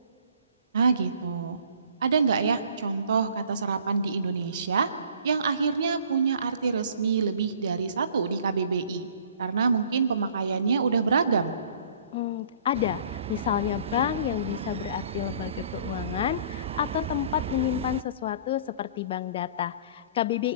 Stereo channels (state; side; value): inverted; both; correlation -0.52